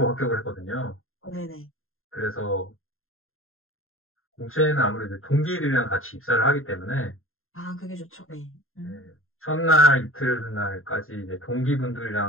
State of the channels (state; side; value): late; right; 0.61 ms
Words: 합격을 했거든요. 네네. 그래서 공채는 아무래도 동기들이랑 같이 입사를 하기 때문에 아, 그게 좋죠. 네. 네, 첫날 이틀날까지 이제